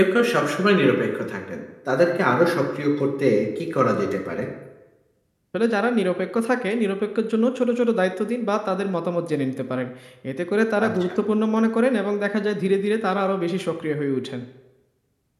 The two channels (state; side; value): identical; both; correlation 1.00